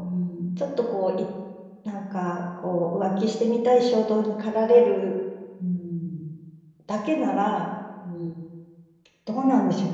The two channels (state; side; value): identical; both; correlation 1.00